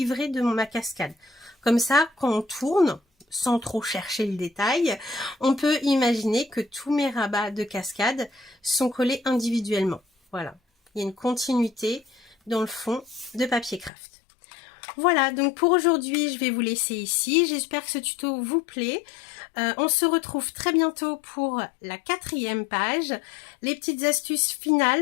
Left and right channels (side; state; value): right; drops out; at 13.9 s